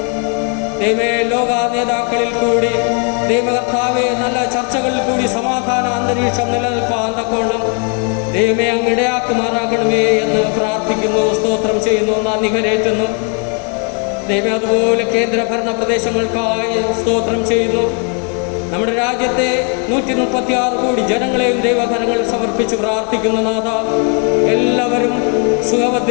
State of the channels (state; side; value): quieter; right; 39.5 dB